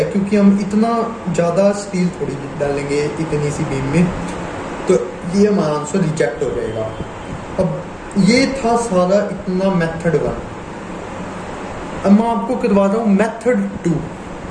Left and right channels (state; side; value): identical; both; correlation 1.00